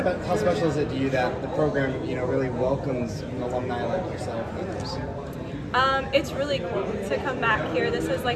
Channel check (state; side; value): identical; both; correlation 1.00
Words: How special is it to you that the program, really welcomes an alumni like yourself and others? It's really cool to come back here. This is